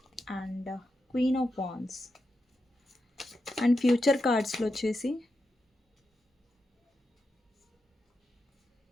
and queen of wands. And future కార్డ్స్లో వచ్చేసి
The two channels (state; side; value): normal; both; correlation 0.87